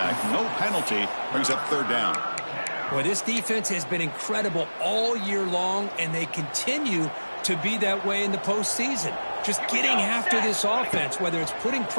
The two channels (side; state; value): both; inverted; correlation -1.00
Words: No penalty. Brings up third down. Well, this defense has been incredible all year long, and they continue to be that way in the postseason. Just getting after this offense, whether it's putting